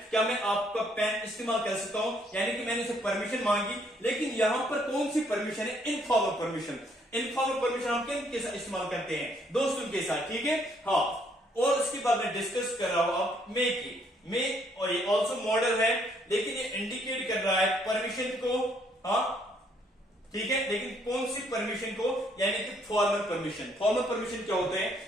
क्या मैं आपका पेन इस्तेमाल कर सकता हूं, यानी कि मैंने उसे परमिशन मांगी। लेकिन यहां पर कौन सी परमिशन है, इनफॉर्मल परमिशन। इनफॉर्मल परमिशन हम किन साथ इस्तेमाल करते हैं, दोस्तों के साथ, ठीक है, हाँ। और उसके बाद मैं डिस्कस कर रहा हूं अब मे की, मे और ये ऑल्सो मॉडल है, लेकिन ये इंडिकेट कर रहा है परमिशन को, हाँ, ठीक है। लेकिन कौन सी परमिशन को, यानी कि फॉर्मल परमिशन। फॉर्मल परमिशन क्या होते हैं,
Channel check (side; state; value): both; normal; correlation 0.68